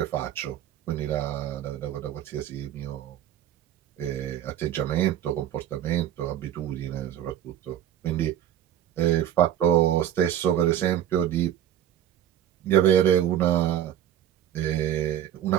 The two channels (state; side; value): quieter; left; 11.0 dB